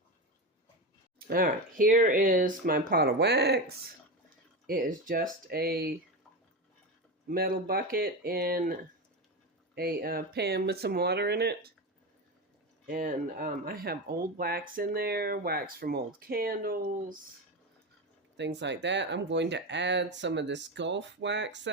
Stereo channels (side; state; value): both; normal; correlation 0.19